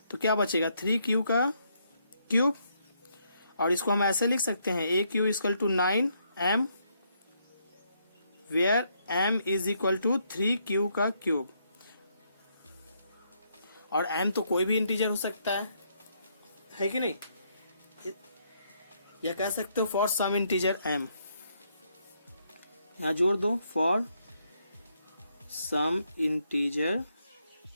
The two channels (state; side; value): inverted; both; correlation -0.74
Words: तो क्या बचेगा 3q का क्यूब, और इसको हम ऐसे लिख सकते हैं AQ equal to 9m, where m is equal to 3q का क्यूब। और m तो कोई भी इंटीजर हो सकता है कि नहीं, या कह सकते हो फॉर सम इंटीजर m, यहां जोड़ दो फॉर सम इंटीजर